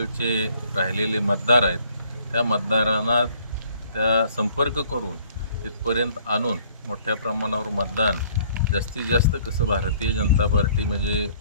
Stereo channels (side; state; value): both; inverted; correlation -0.59